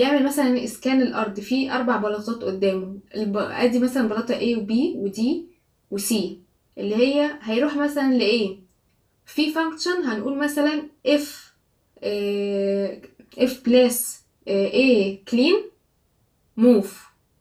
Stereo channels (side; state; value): both; identical; correlation 1.00